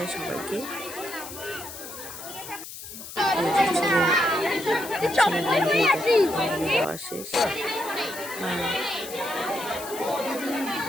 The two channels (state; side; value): noise; left; hiss, 12 dB below the sound